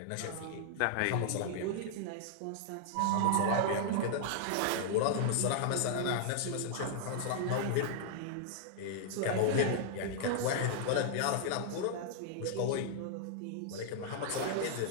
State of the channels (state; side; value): different; both; correlation -0.01